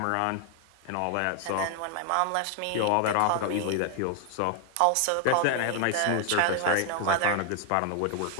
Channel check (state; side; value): different; both; correlation 0.00